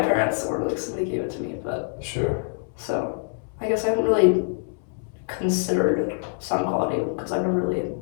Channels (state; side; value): silent; right; 61 dB below the other